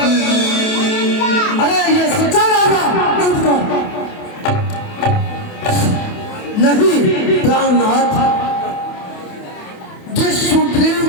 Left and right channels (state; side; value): late; right; 28 ms